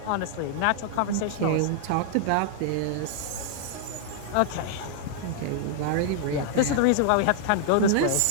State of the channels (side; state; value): both; different; correlation -0.01